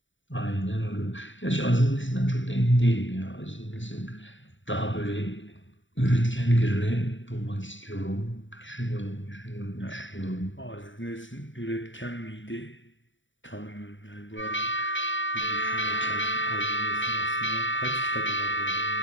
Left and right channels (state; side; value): late; right; 0.55 ms